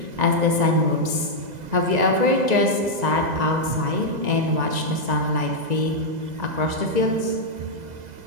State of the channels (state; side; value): late; left; 2.0 ms